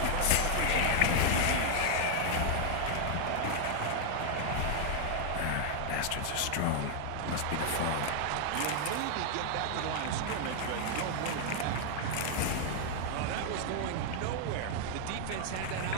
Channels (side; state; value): both; different; correlation 0.00